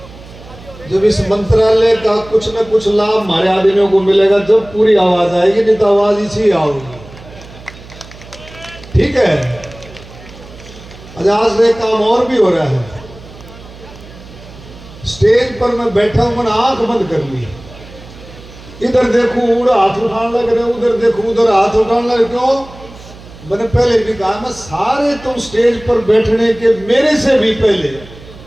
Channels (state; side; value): noise; right; hum, 19 dB below the sound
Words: जब इस मंत्रालय का कुछ न कुछ लाभ हमारे आदमियों को मिलेगा, जब पूरी आवाज आएगी, नहीं तो आवाज इसी आओगी। ठीक है, आज एक काम और भी हो रहा है। स्टेज पर मैं बैठा हूं, मैंने आंख बंद कर ली, इधर देखूं उधर हाथ उठाने लग रहे, उधर देखूं उधर हाथ उठाने लग। क्यों? मैंने पहले भी कहा, मैं सारे तुम स्टेज पर बैठने के मेरे से भी पहले,